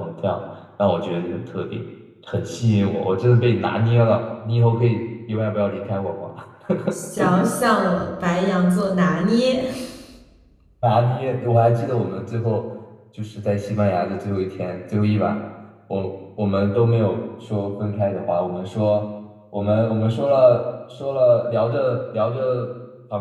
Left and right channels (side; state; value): both; identical; correlation 1.00